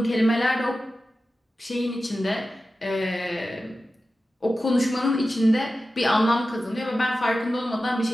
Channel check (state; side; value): normal; both; correlation 0.94